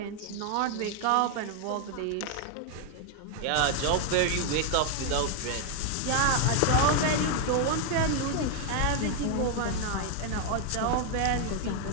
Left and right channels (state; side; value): different; both; correlation 0.00